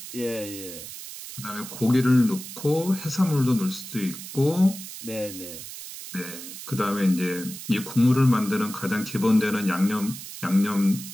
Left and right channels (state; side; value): noise; right; hiss, 11 dB below the sound